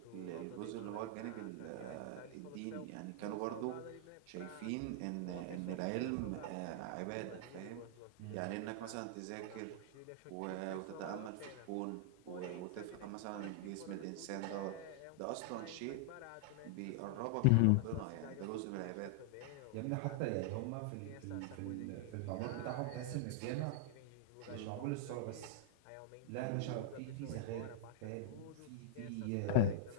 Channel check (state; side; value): different; both; correlation -0.01